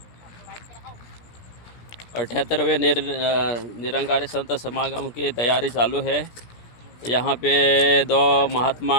अठहत्तरवें निरंकारी संत समागम की तैयारी चालू है। यहाँ पे दो महात्मा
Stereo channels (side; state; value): right; late; 17 ms